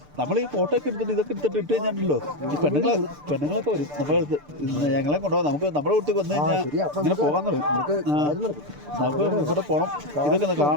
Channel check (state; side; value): late; left; 6.8 ms